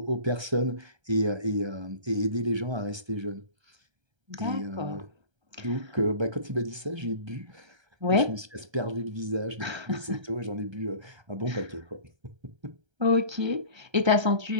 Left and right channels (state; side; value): late; left; 1.3 ms